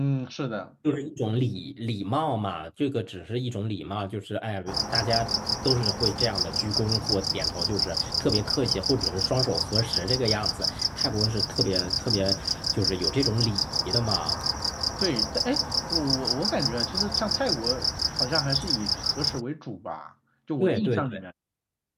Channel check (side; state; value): both; identical; correlation 1.00